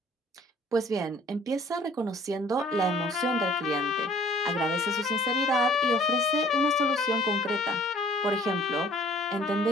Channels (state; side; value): normal; both; correlation 0.55